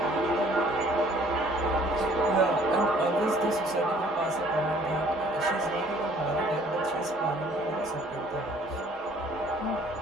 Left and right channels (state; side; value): normal; both; correlation 0.57